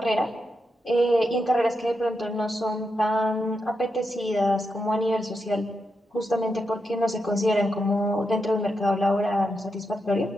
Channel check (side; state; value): both; normal; correlation 0.85